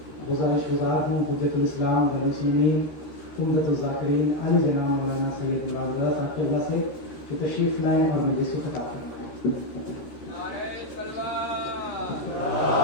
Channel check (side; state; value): right; late; 13 ms